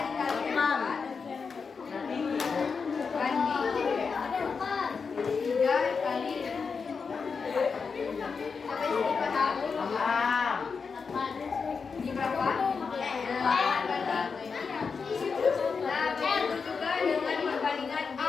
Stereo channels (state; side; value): quieter; right; 5.3 dB